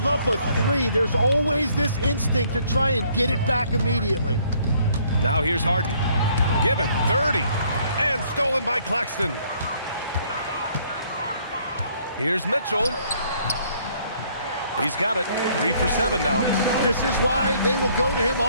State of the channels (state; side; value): inverted; both; correlation -0.64